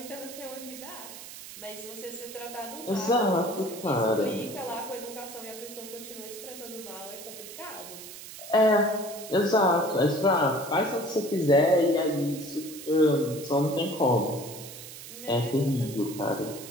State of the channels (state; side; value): noise; right; hiss, 13 dB below the sound